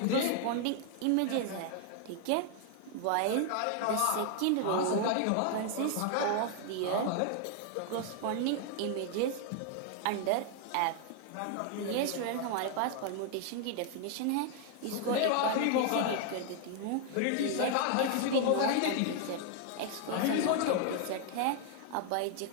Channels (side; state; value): both; different; correlation 0.00